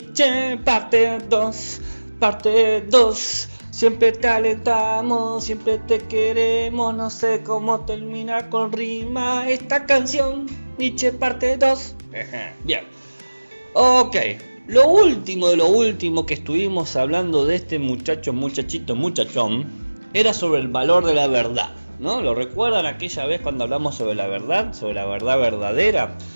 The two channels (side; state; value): both; inverted; correlation -1.00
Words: parte 2, parte 2. Siempre te alentamos, siempre te queremos, no sé cómo terminar con rima esta canción, Nietzsche parte 2. Bien, ok, lo último de lo último que estuvimos hablando de este muchachón, era sobre el valor de la verdad, ¿no? ¿Lo recuerdan aquella vez cuando hablamos sobre la verdad verdadera?